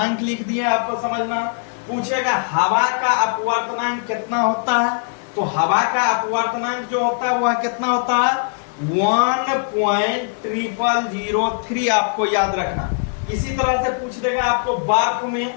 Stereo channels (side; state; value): right; silent; 66 dB below the other